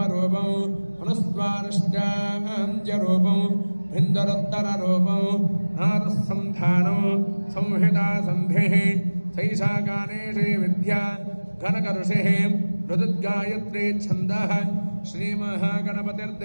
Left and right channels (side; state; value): both; inverted; correlation -1.00